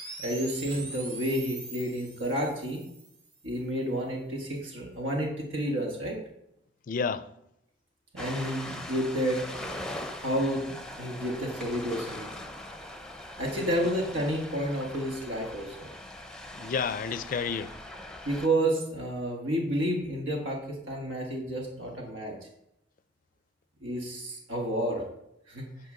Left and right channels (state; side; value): normal; both; correlation 0.45